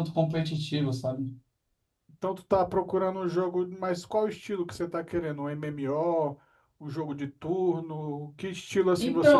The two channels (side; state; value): both; identical; correlation 1.00